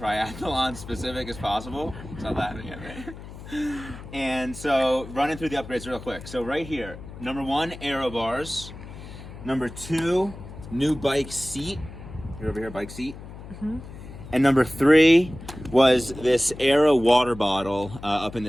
specific as possible. It's not laughing at me. And so, running through the upgrades real quick. So right here, number 1, Aero bars. Number 2, new bike seat. You're over here, bike seat. Mm-hmm. And number 3 was this Aero water bottle up in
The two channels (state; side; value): noise; left; hum, 14 dB below the sound